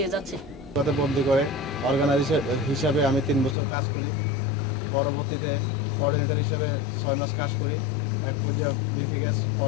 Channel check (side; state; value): right; drops out; at 3.6 s